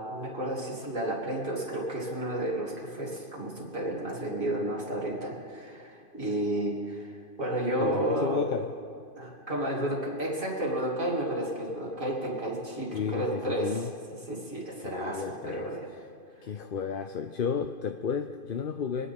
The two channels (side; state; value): right; late; 2.5 ms